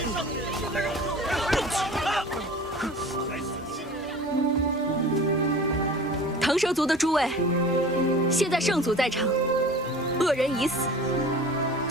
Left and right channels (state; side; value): normal; both; correlation 0.40